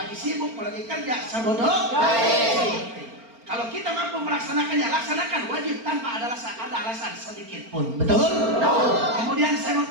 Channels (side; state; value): left; late; 4.4 ms